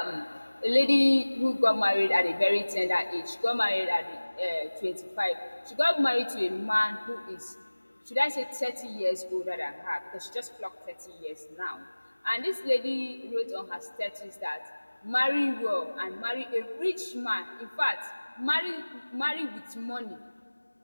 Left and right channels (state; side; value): inverted; both; correlation -1.00